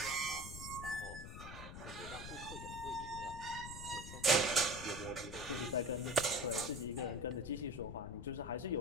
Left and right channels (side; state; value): left; noise; rumble, 10 dB below the sound